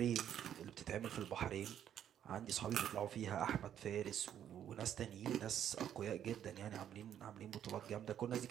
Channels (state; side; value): quieter; left; 9.9 dB